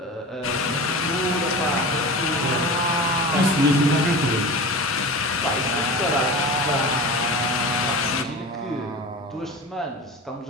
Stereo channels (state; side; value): normal; both; correlation 0.32